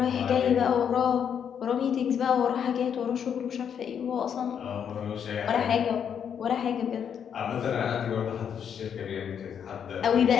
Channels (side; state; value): right; quieter; 8.0 dB